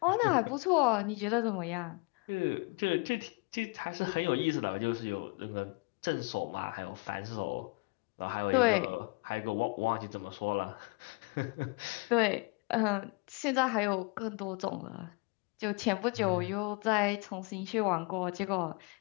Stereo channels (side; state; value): right; quieter; 30.3 dB